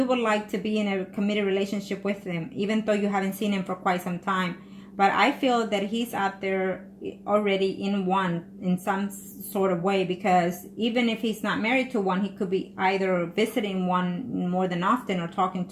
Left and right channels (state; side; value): identical; both; correlation 1.00